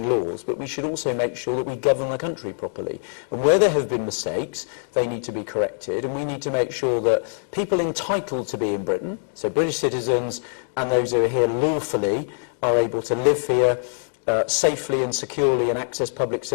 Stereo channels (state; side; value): silent; right; digital silence